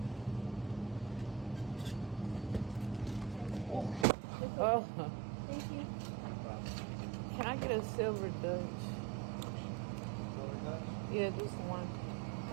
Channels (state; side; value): drops out; left; at 4.0 s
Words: Oh. Thank you. Can I get a silver Dutch? Silver Dutch? Yeah, just one.